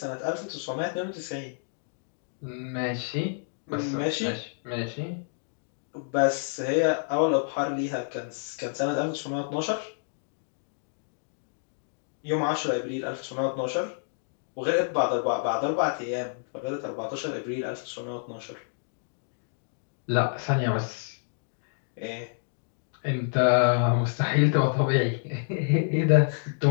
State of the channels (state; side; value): silent; right; digital silence